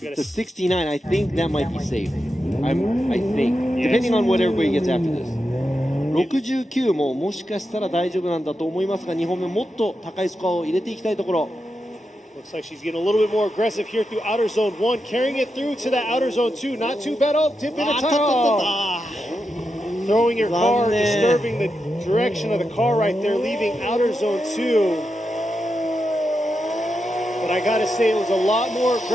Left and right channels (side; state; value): both; normal; correlation 0.87